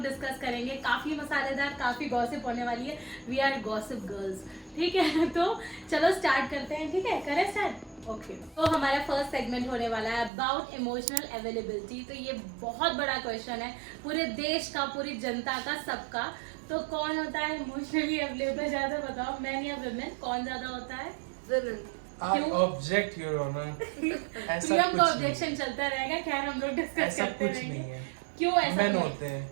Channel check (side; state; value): left; drops out; at 10.3 s